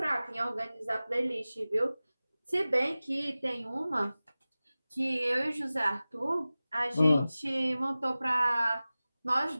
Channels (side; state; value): both; inverted; correlation -0.97